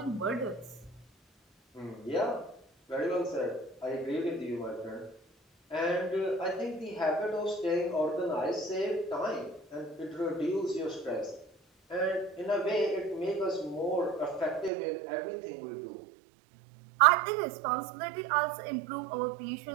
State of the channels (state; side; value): drops out; left; at 14.7 s